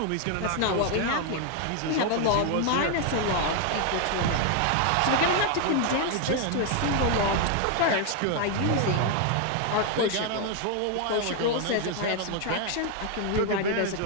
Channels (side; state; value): both; different; correlation 0.01